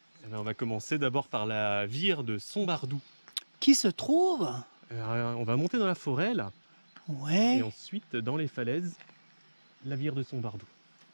eh bien, on va commencer d'abord par la vire de Sombardou. Qui se trouve? On va monter dans la forêt là, Ouais. et ensuite dans les falaises, la vire de Sombardou.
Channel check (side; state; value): both; inverted; correlation -1.00